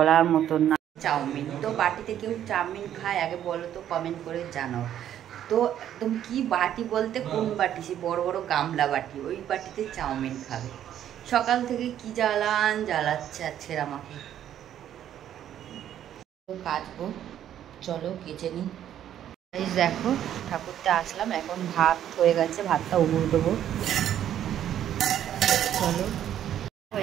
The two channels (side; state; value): left; quieter; 10.8 dB